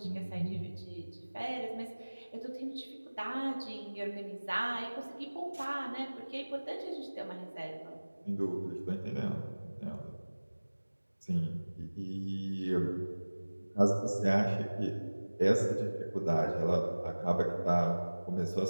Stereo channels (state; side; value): inverted; both; correlation -1.00